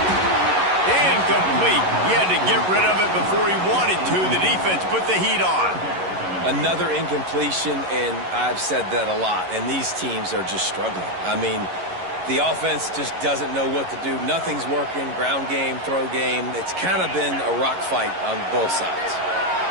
Incomplete. He had to get rid of it before he wanted to. The defense put the heat on. Another incompletion, and I've said that a lot, and these teams are just struggling. I mean, the offense just doesn't know what to do. Nothing's working, ground game, throw game. It's kind of been a rock fight on both sides.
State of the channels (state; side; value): late; left; 11 ms